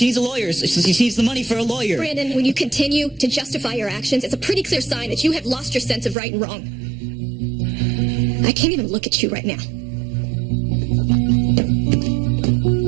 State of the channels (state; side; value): drops out; left; at 6.2 s